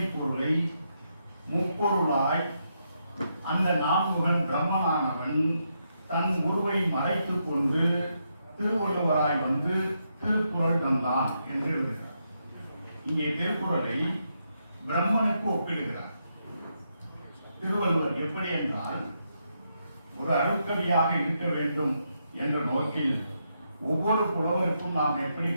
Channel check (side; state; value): both; inverted; correlation -0.81